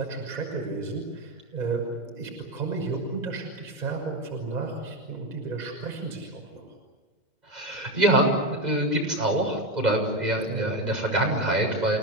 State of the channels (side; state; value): left; late; 2.0 ms